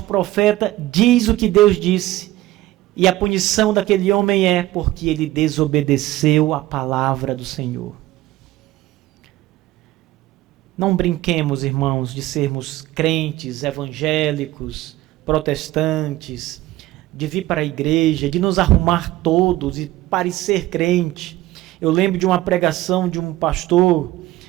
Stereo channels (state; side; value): quieter; left; 16.6 dB